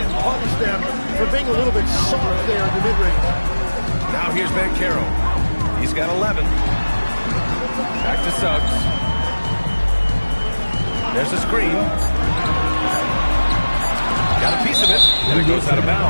punish them for being a little bit soft there in the mid-range. Now here's Banchero. He's got 11. Back to Suggs. There's a screen. Got a piece of it, and it goes out of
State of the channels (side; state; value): both; inverted; correlation -1.00